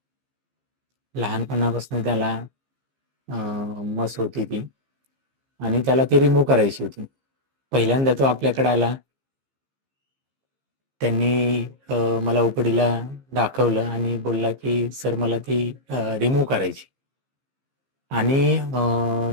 लहानपणापासून त्याला मस होती ती आणि त्याला ती रिमूव्ह करायची होती. पहिल्यांदा तो आपल्याकडे आला. त्यांनी मला ओपीडीला दाखवलं आणि बोलला की सर मला ती रिमूव्ह करायची. आणि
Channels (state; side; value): late; left; 15 ms